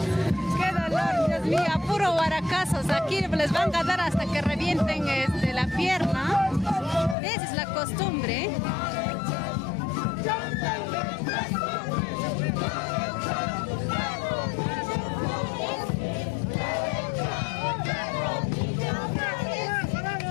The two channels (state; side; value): drops out; right; at 7.2 s